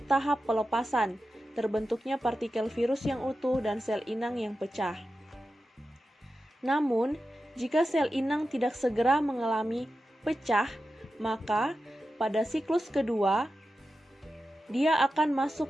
tahap pelepasan, terbentuknya partikel virus yang utuh dan sel inang yang pecah. Namun, jika sel inang tidak segera mengalami pecah, maka pada siklus kedua, dia akan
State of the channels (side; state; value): both; normal; correlation 0.92